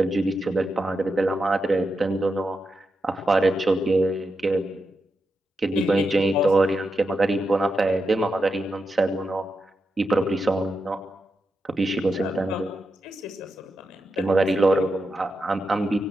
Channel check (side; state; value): both; normal; correlation 0.87